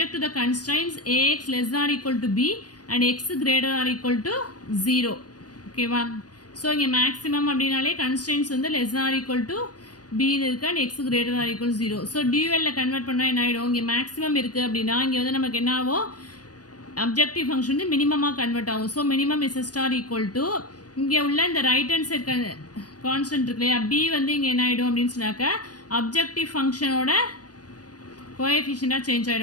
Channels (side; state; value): right; late; 0.69 ms